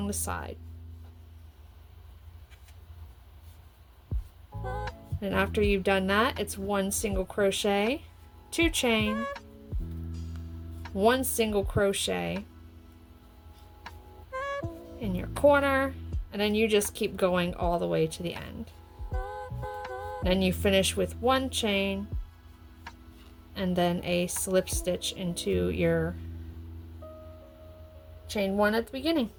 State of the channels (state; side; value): identical; both; correlation 1.00